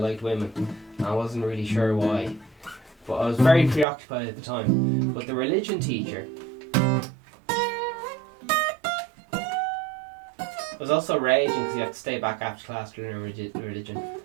women. I wasn't really sure why, but I was very preoccupied at the time. But the religion teacher was also raging because he had to stay back after class to learn religion.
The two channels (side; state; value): left; drops out; at 3.9 s